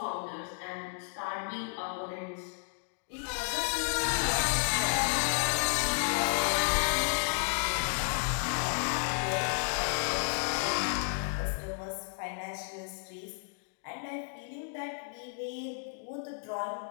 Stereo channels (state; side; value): silent; right; 56 dB below the other